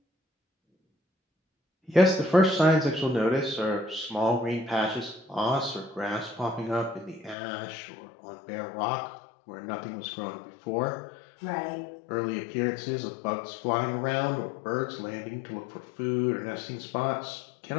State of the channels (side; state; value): right; drops out; at 7.4 s